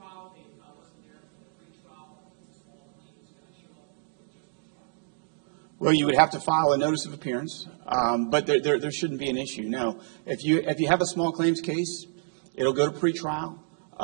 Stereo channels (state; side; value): silent; left; digital silence